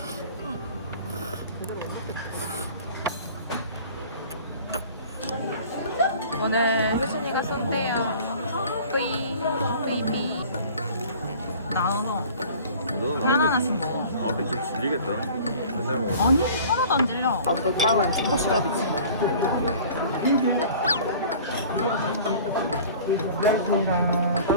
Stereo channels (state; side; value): inverted; both; correlation -0.46